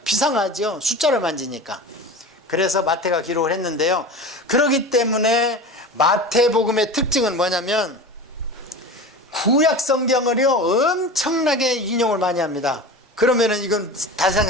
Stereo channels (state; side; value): normal; both; correlation 0.32